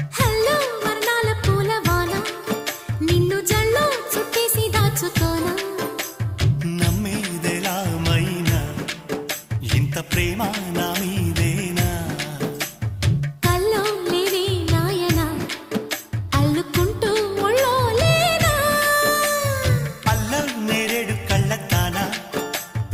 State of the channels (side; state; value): both; identical; correlation 1.00